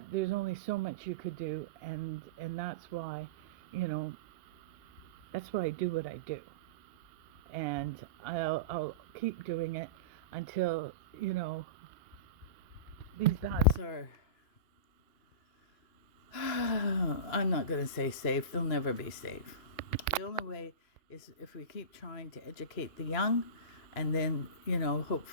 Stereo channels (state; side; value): late; right; 2.8 ms